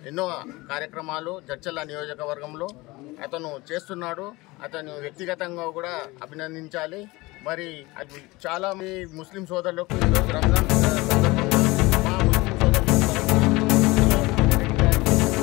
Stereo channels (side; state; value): right; quieter; 22.0 dB